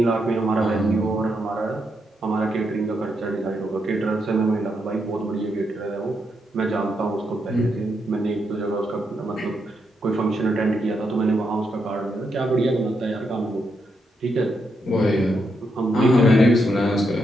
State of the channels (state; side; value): normal; both; correlation 0.81